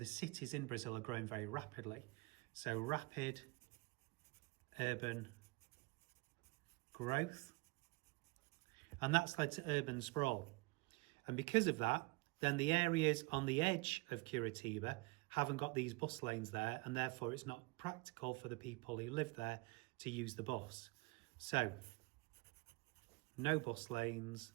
cities in Brazil are growing very rapidly. So rapid urban growth, and that's led to urban sprawl. And because of that, then the areas on the edge of Curitiba haven't got these bus lanes there, and therefore it's not practical for the people who live there to use the bus. So, no bus lanes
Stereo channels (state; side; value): quieter; left; 25.8 dB